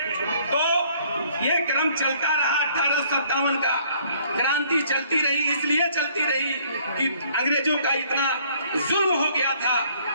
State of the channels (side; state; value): both; inverted; correlation -0.61